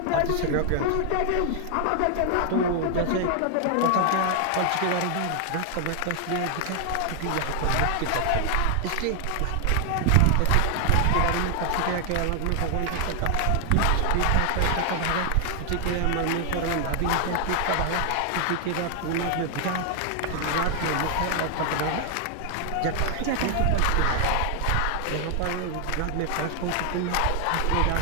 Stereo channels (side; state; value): both; different; correlation 0.00